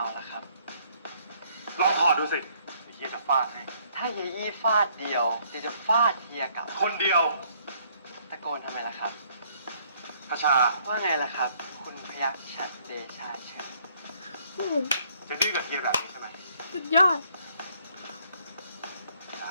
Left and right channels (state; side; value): inverted; both; correlation -0.65